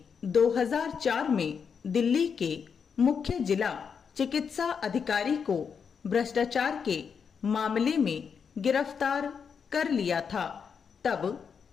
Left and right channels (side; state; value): right; quieter; 6.5 dB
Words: 2004 में दिल्ली के मुख्य जिला चिकित्सा अधिकारी को भ्रष्टाचार के मामले में गिरफ्तार कर लिया था। तब